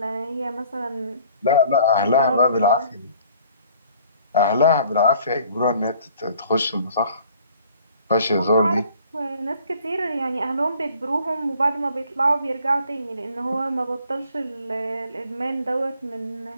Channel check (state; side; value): inverted; both; correlation -0.55